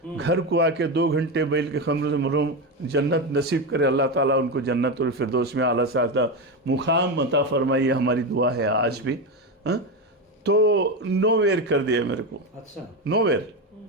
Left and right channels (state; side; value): normal; both; correlation 0.14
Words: घर को आके 2 घंटे बैल के खमर से मरूम जन्नत नसीब करे अल्लाह ताला उनको, जन्नत और फिरदौस में आला सादा मुकाम अता फरमाइए, हमारी दुआ है आज भी। तो नोवेयर कर दिया मेरे को। अच्छा। नोवेयर।